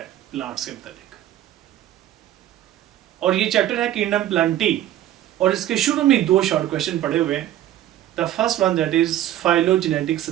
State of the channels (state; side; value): quieter; left; 12.7 dB